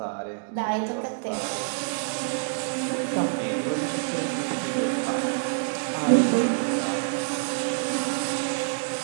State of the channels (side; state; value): left; silent; digital silence